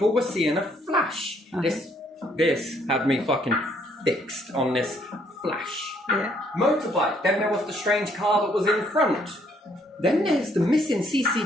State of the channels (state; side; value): normal; both; correlation 0.67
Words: were seeing a flash. This had me fucking fixed on this flash. Yeah. Motorbike. Then there was the strange car that was in front. Then there's the missing